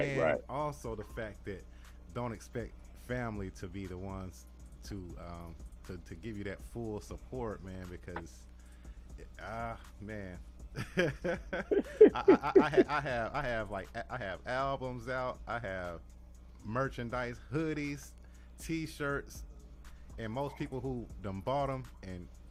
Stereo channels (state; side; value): identical; both; correlation 1.00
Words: also the fact that don't expect family to be the ones to give you that full support, man, because man. I have albums out, I have merchandise, hoodies, t-shirts, and most people who done bought them and